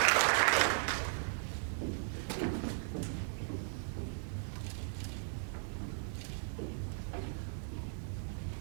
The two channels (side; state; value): left; silent; digital silence